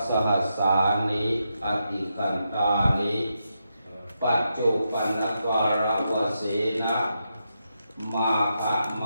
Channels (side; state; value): both; inverted; correlation -0.84